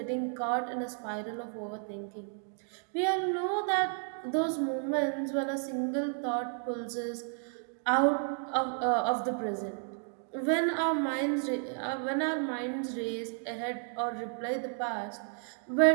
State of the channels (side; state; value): left; silent; 56 dB below the other